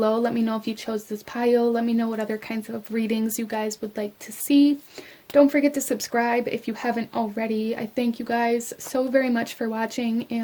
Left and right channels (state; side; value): identical; both; correlation 1.00